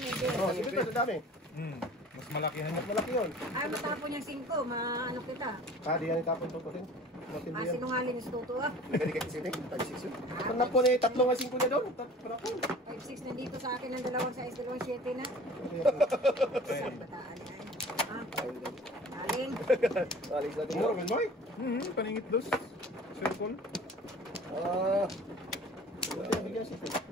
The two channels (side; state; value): both; normal; correlation 0.44